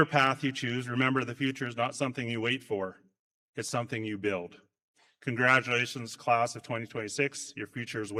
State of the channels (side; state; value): both; identical; correlation 1.00